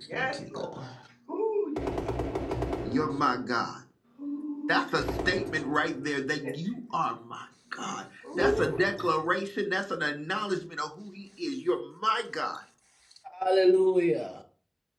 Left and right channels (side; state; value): both; identical; correlation 1.00